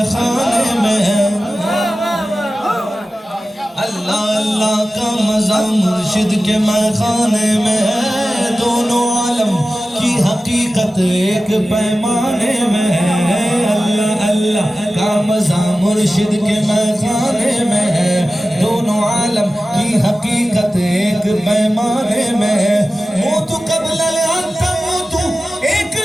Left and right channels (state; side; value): normal; both; correlation 0.95